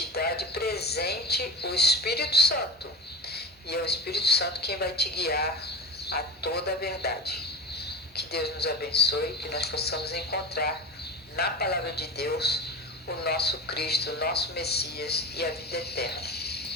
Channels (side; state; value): both; normal; correlation 0.28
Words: dá de presente o Espírito Santo. E é o Espírito Santo quem vai te guiar a toda a verdade. Que Deus nos abençoe, que nós possamos encontrar na palavra de Deus, o nosso Cristo, o nosso Messias e a vida eterna.